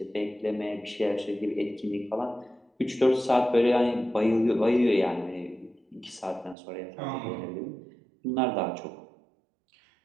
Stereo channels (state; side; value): drops out; left; at 6.6 s